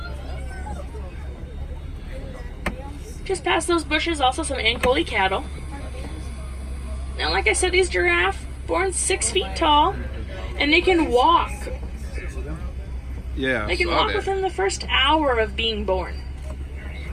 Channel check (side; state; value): both; identical; correlation 1.00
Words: Just past those bushes, also some Ankoli cattle. Now, like I said, these giraffes born 6 feet tall, and they can walk. Yeah, they can walk within the first hour of being born.